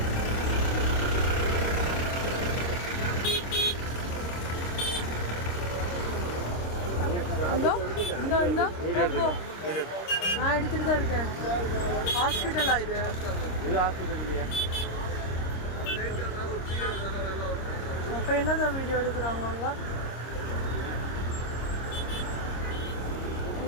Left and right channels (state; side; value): late; right; 26 ms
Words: நான் எடுத்துட்டு தான் இருக்கேன். ஹாஸ்பிட்டலா இது? ஹாஸ்பிட்டல் இல்லையா? அப்போ என்னதான் வீடியோ எடுக்கிறாங்க அங்கே?